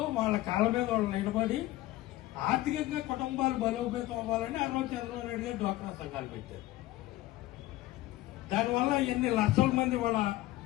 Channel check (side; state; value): right; quieter; 16.8 dB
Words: వాళ్ళ కాళ్ళ మీద వాళ్ళు నిలబడి ఆర్థికంగా కుటుంబాలు బలోపేతం అవ్వాలని చంద్రబాబు నాయుడు గారు డ్వాక్రా సంఘాలు పెట్టారు. దానివల్ల ఎన్ని లక్షల మంది